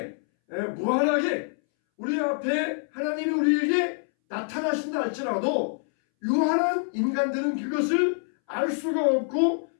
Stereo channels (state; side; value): silent; right; 61 dB below the other